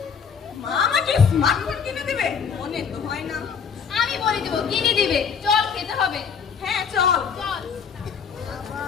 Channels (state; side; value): quieter; right; 6.6 dB